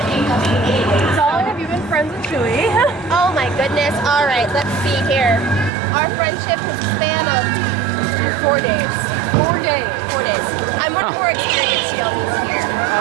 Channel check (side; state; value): left; drops out; at 5.7 s